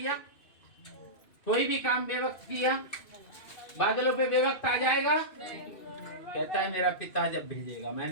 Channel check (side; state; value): right; late; 2.5 ms